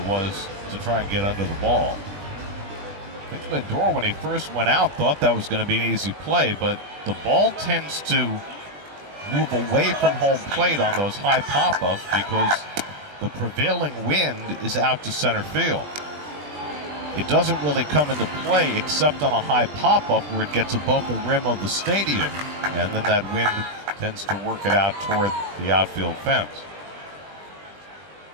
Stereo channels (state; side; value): late; left; 20 ms